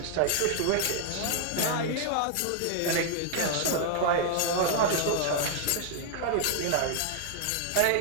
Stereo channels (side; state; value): both; different; correlation 0.00